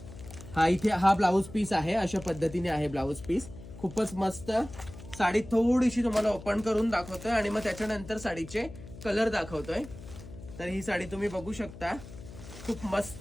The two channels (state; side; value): noise; left; hum, 15 dB below the sound